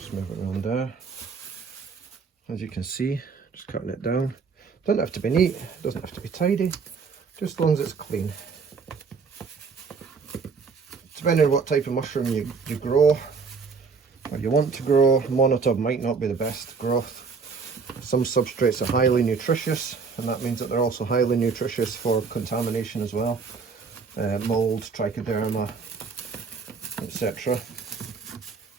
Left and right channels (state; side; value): quieter; left; 5.2 dB